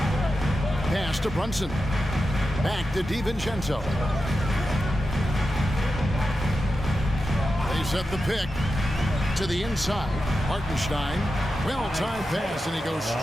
Pass to Brunson. Back to DiVincenzo. They set the pick to the inside. Hartenstein, well-timed pass, and he goes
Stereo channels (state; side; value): normal; both; correlation 0.90